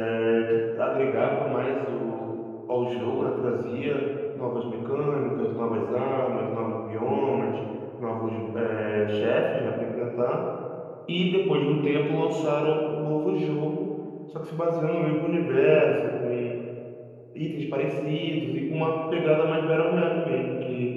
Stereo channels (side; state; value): both; identical; correlation 1.00